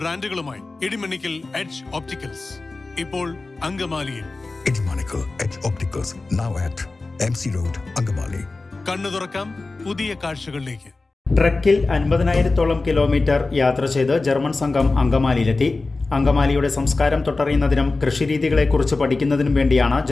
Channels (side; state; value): right; quieter; 3.5 dB